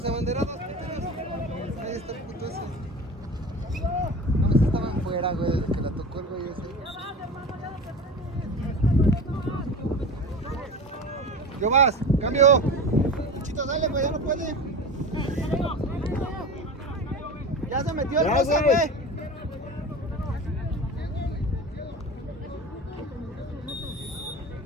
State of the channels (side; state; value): both; normal; correlation 0.31